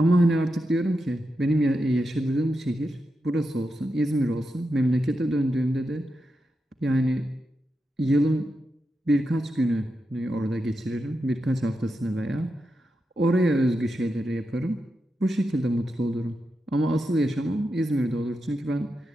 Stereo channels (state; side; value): normal; both; correlation 0.88